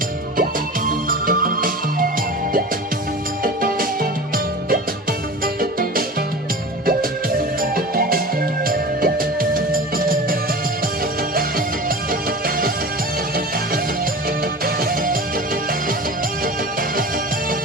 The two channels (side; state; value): both; normal; correlation 0.34